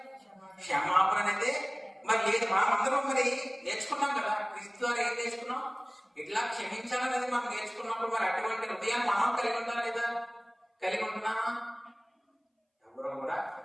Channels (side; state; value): both; identical; correlation 1.00